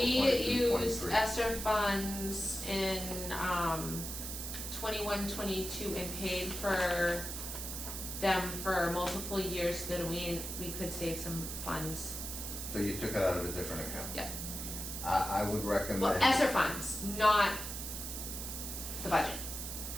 we 22, used 23? ESSER funds in 21, 22 and paid for them for multiple years so that we could save some funds. So you took it out of a different account? Yeah. I would recommend. Well, ESSER funds, not the budget.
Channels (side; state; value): right; noise; hiss, 6 dB below the sound